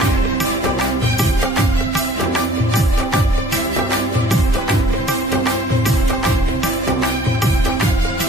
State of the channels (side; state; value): both; normal; correlation 0.51